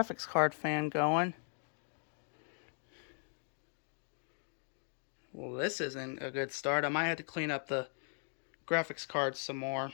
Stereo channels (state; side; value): silent; right; 52 dB below the other